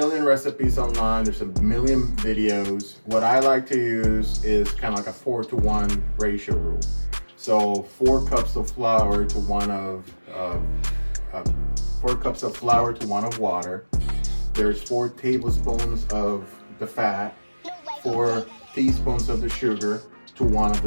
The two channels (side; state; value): both; inverted; correlation -1.00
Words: recipes online. There's a million videos. What I like to use is kind of like a 4-to-1 ratio rule. So 4 cups of flour to 1 of water. There's 4 tablespoons of the fat, 4 teaspoons of the sugar to 1 of